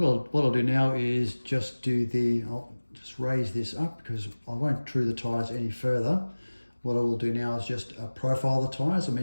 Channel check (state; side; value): inverted; both; correlation -1.00